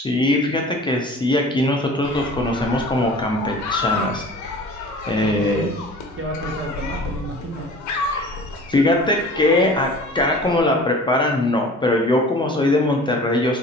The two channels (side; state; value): both; normal; correlation 0.43